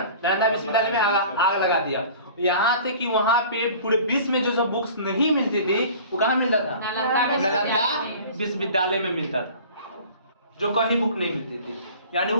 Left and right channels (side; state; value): both; inverted; correlation -0.44